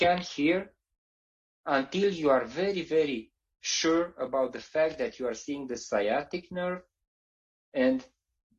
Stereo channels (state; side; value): identical; both; correlation 1.00